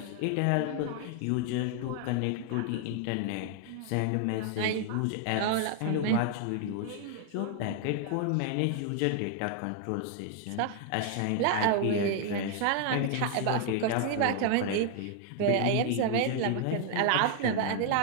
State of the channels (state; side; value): different; both; correlation 0.00